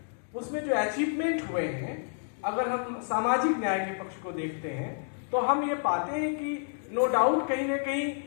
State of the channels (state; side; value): silent; right; digital silence